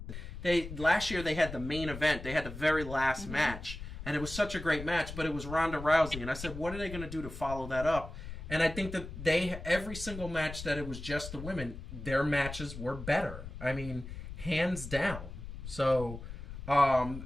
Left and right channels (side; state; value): left; noise; rumble, 10 dB below the sound